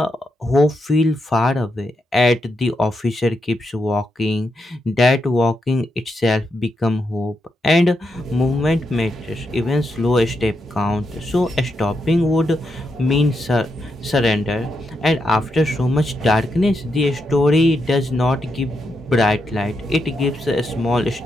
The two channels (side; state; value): both; normal; correlation 0.83